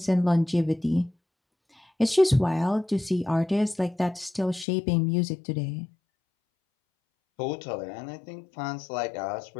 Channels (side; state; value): right; drops out; at 4.7 s